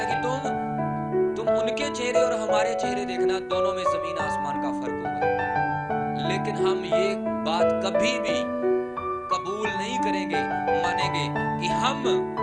कि तुम उनके चेहरे और हमारे चेहरे देखना, दोनों में जमीन आसमान का फर्क होगा। लेकिन हम ये बात कभी भी कबूल नहीं करेंगे, मानेंगे कि हम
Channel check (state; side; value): identical; both; correlation 1.00